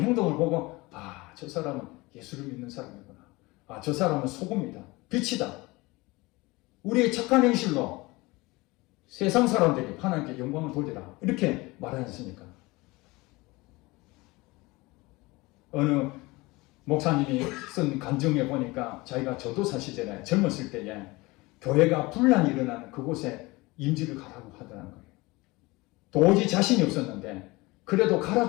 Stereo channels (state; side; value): quieter; right; 22.5 dB